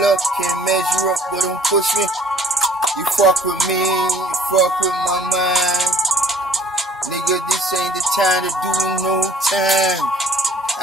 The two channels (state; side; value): normal; both; correlation 0.56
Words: up, can't measure up, but don't push me. You fuck with me, you fuck with my mind. Nigga, this ain't the time to do no time.